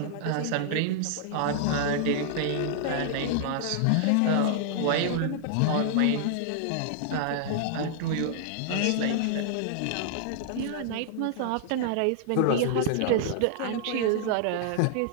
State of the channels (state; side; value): different; both; correlation -0.01